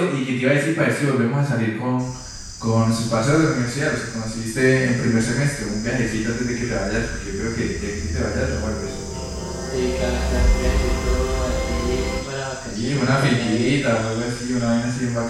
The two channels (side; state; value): both; identical; correlation 1.00